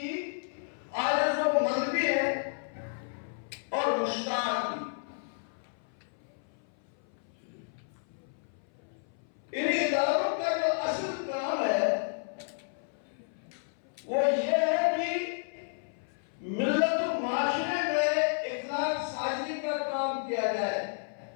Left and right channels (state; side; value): silent; right; 57 dB below the other